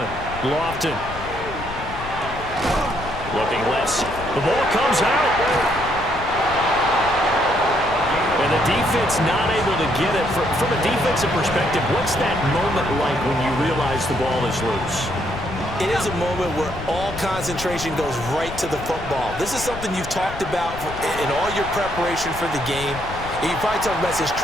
Lofton. Looking left. The ball comes out. And the defense not able to get it. From a defensive perspective, what's that moment like when you realize the ball is loose? It is a moment where all concentration goes right to the football. This is something you've talked about in all your preparation for the game. You probably talked about since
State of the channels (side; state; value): left; noise; rumble, 12 dB below the sound